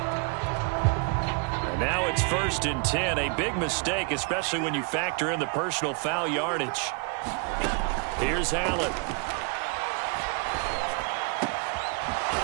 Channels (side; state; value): left; quieter; 35.0 dB